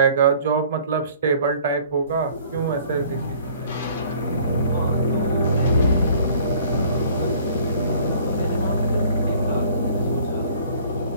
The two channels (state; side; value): inverted; both; correlation -0.53